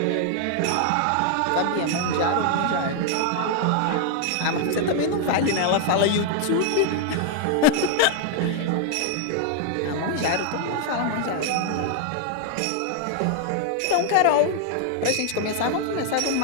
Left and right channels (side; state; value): both; different; correlation 0.00